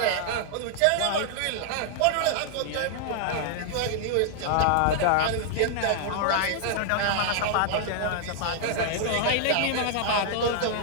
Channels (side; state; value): both; different; correlation 0.00